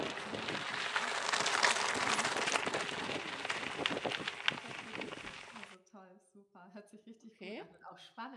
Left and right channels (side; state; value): both; identical; correlation 1.00